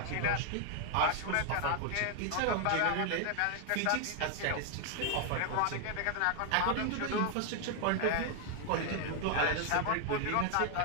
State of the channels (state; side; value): different; both; correlation 0.00